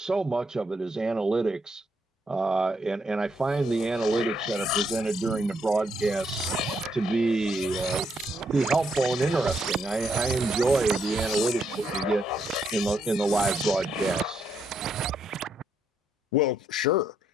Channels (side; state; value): both; normal; correlation 0.76